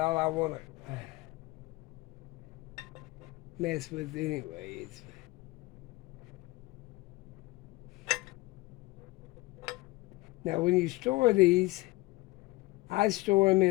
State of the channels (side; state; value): right; quieter; 21.3 dB